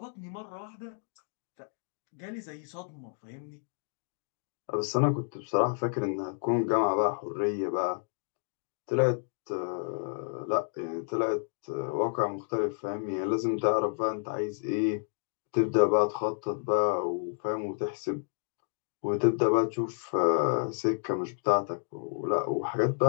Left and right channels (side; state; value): right; silent; 57 dB below the other